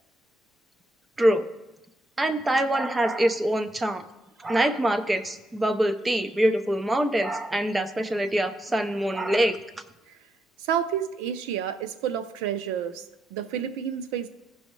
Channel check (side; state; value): both; normal; correlation 0.81